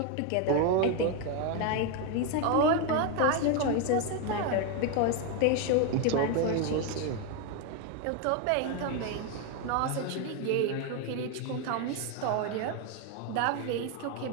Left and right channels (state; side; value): different; both; correlation 0.01